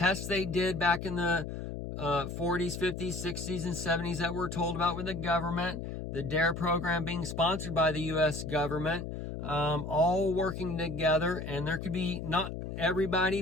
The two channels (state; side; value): noise; left; hum, 6 dB below the sound